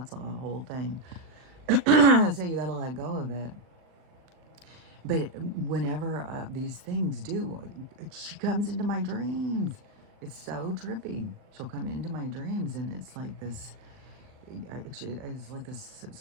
whole thing. So you got to let go of it. But whenever these things do, she comes into my dreams. It's so trippy. She'll come into my dreams, and it's like this. It's like this,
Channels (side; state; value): left; late; 39 ms